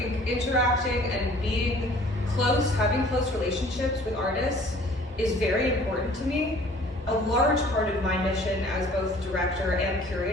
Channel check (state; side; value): normal; both; correlation 0.52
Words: interacting and being close, having close relationships with artists is very important to me. A large part of my mission as both director and